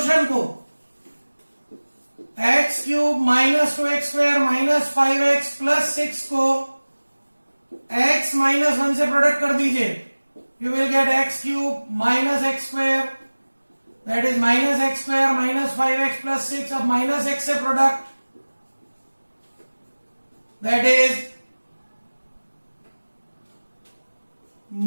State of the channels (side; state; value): both; inverted; correlation -1.00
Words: को x cube minus 2x square minus 5x plus 6 को x माइनस 1 से प्रोडक्ट कर दीजिए। You will get x cube minus x square, that is minus x square minus 5x plus 6। अब माइनस x से product, that is